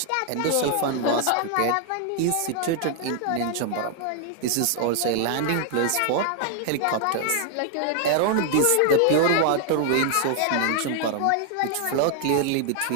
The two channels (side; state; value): both; different; correlation 0.00